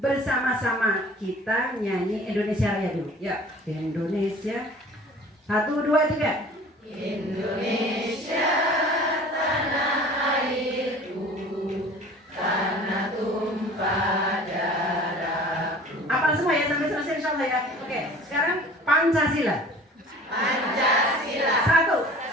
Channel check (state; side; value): normal; both; correlation 0.46